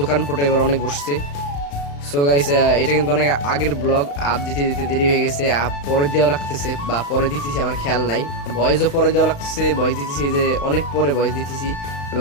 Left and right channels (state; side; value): late; right; 35 ms